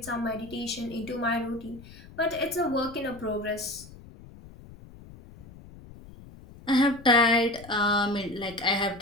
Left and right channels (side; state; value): left; noise; rumble, 19 dB below the sound